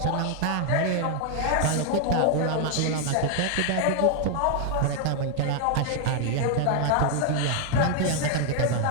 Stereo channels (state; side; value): different; both; correlation 0.00